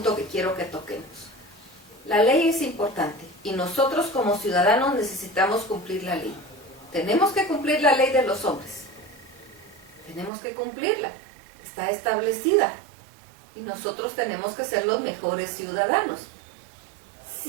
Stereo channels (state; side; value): drops out; left; at 10.3 s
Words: que quiero que toquemos. La ley es importante y nosotros como ciudadanos necesitamos cumplir la ley. Tenemos que cumplir la ley de los hombres. Tenemos que cumplirla. Está establecida. Y nosotros tenemos que ser los mejores ciudadanos.